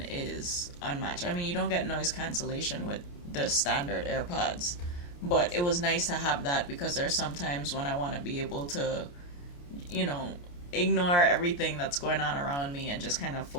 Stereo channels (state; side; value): late; right; 28 ms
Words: is unmatched. I mean, you don't get noise cancellation with the standard AirPods, but it was nice to have that because there's sometimes when I want to be able to, ignore everything that's going on around me and just kind of